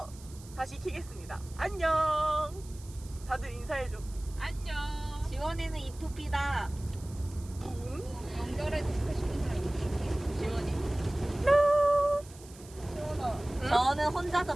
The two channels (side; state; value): right; noise; hiss, 21 dB below the sound